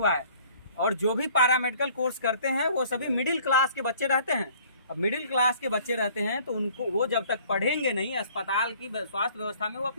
है। और जो भी पैरामेडिकल कोर्स करते हैं वो सभी मिडिल क्लास के बच्चे रहते हैं। अब मिडिल क्लास के बच्चे रहते हैं तो उनको वो जब तक पढ़ेंगे नहीं अस्पताल की स्वास्थ्य व्यवस्था में, वो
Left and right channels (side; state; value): both; inverted; correlation -0.55